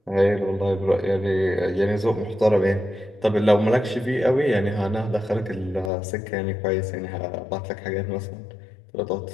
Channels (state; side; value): drops out; right; at 5.9 s